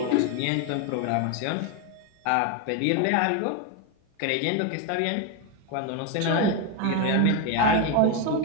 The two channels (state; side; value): different; both; correlation 0.02